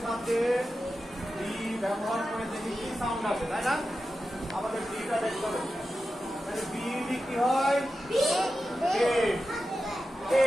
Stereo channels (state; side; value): normal; both; correlation 0.92